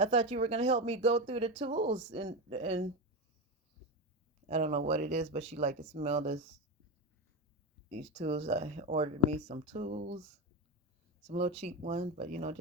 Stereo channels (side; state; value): both; normal; correlation 0.16